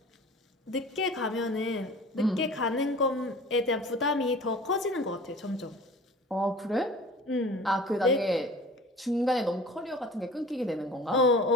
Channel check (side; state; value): both; normal; correlation 0.42